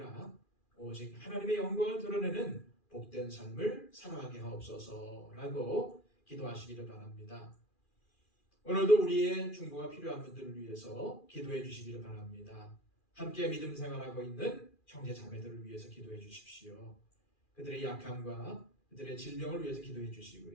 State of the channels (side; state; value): right; late; 2.4 ms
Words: 오직 하나님의 영광을 드러내는 복된 삶을 살아가게 하옵소서라고 기도하시기를 바랍니다. 오늘도 우리의 중보가 필요한 분들을 위해서 기도해 주시기를 바랍니다. 함께 믿음 생활하고 있는 형제 자매들을 위해서 기도해 주십시오. 그들의 약함과 그들의 질병을 위해서 기도해